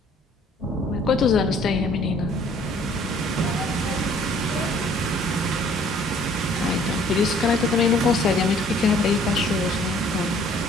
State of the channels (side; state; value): both; normal; correlation 0.57